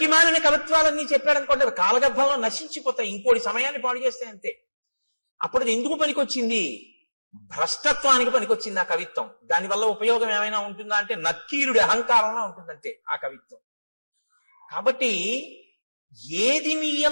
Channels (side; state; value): both; inverted; correlation -1.00